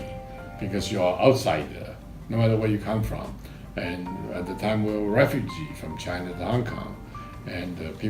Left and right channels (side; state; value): both; identical; correlation 1.00